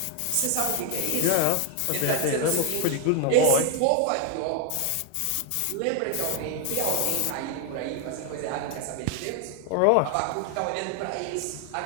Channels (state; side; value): different; both; correlation 0.01